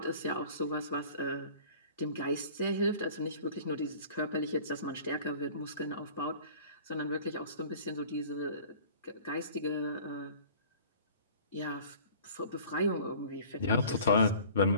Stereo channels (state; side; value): inverted; both; correlation -0.47